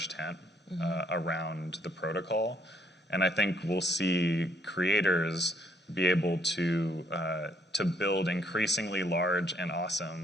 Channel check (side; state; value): both; normal; correlation 0.68